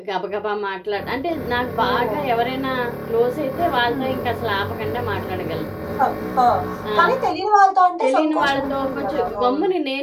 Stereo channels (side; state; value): both; identical; correlation 1.00